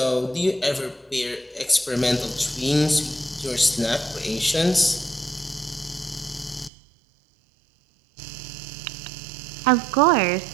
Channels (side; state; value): left; drops out; at 6.7 s